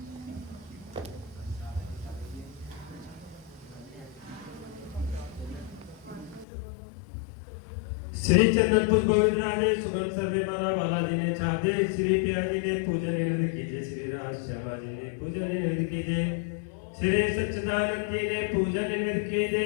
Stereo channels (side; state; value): right; drops out; at 6.5 s